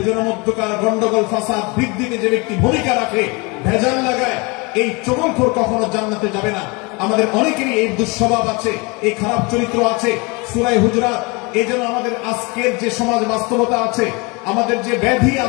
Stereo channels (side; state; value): right; quieter; 28.0 dB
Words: মধ্যকার গন্ডগোল ফাসাদ বৃদ্ধিতে যে ব্যক্তি ভূমিকা রাখে, ভেজাল লাগায়, এই চগলখোর কখনো জান্নাতে যাবে না। আমাদের অনেকেরই এই দুঃস্বভাব আছে, এই খারাপ চরিত্র আছে। সূরা হুজুরাত, এই জন্য আমাদের আজকের যে সমাজ বাস্তবতা আছে, আমাদের যে ব্যাধি